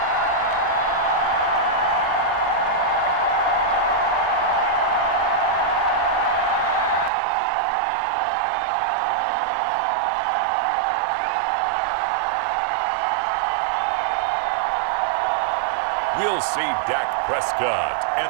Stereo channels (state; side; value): drops out; left; at 7.1 s